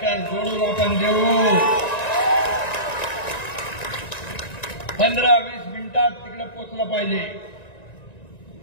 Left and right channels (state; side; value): late; right; 1.9 ms